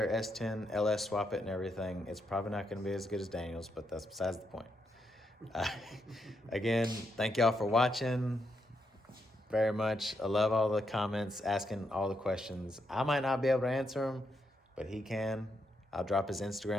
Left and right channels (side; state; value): both; normal; correlation 0.80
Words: S10 LS, swap it and everything, it's probably not going to be as good as Daniel's, but that's besides the point. Again, thank y'all for watching very much. I love all the comments, asking all the questions. I might not be able to answer them, but he can. I'll drop his